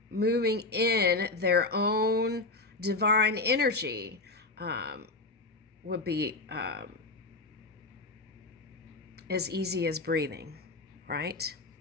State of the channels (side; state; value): right; quieter; 3.3 dB